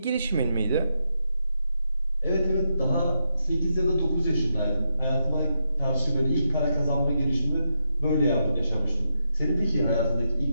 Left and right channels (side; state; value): both; inverted; correlation -0.83